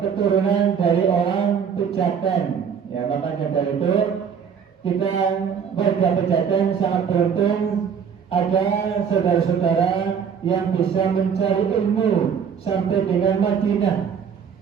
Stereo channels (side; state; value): left; quieter; 7.1 dB